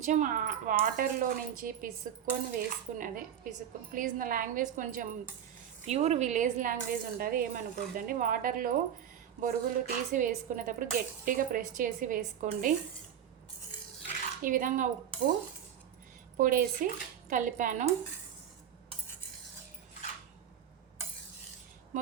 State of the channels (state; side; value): quieter; left; 9.3 dB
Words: వాటర్లో నుంచి పిసుక్కొని వేసుకున్నది. ప్లీజ్ నా లాంగ్వేజ్ కొంచెం ప్యూర్ విలేజ్ లాంగ్వేజ్ ఉంటుంది, ఏమనుకోద్దండి. వాటర్లో బొరుగులు తీసి వేసుకునేటప్పుడు గట్టిగా ప్రెస్ చేసి వేసుకోండి. ఈ విధంగా ఉప్పు పొడేసి కలిపాను.